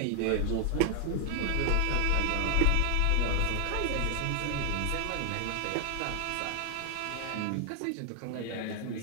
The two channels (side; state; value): both; different; correlation 0.00